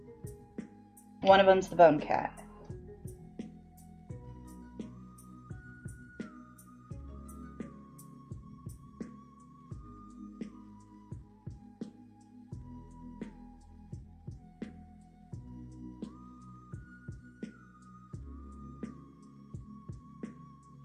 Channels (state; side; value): identical; both; correlation 1.00